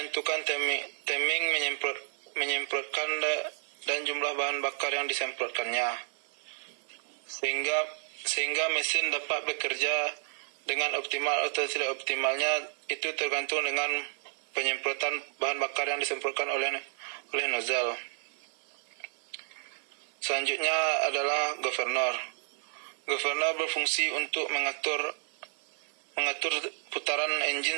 timing menyemprotkan dan jumlah bahan bakar yang disemprotkannya, sehingga mesin dapat bekerja dengan optimal atau tidak optimalnya itu tergantung dengan penyemprotan bahan bakar yang disemprotkan oleh nozzle. Selanjutnya adalah governor. Governor berfungsi untuk mengatur putaran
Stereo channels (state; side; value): silent; left; 57 dB below the other